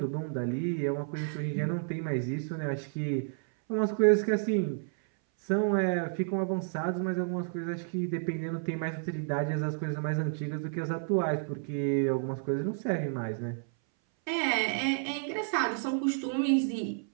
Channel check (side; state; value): left; silent; 57 dB below the other